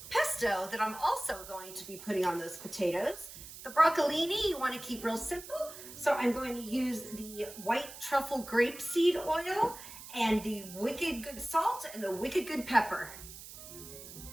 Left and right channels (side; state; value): right; noise; hiss, 14 dB below the sound